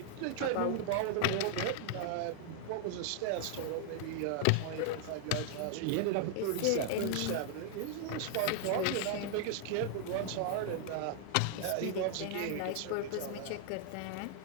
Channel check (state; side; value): different; both; correlation 0.00